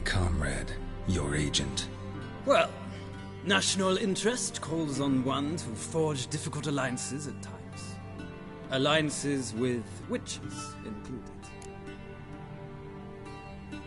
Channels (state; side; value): identical; both; correlation 1.00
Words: comrade, your agent. Well, national interest calls on one to forge difficult alliances at times. Alliances with witches included.